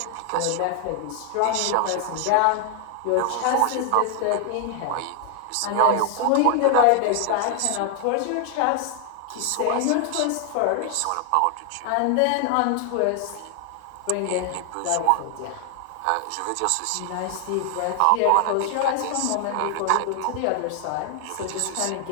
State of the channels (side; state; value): both; different; correlation 0.00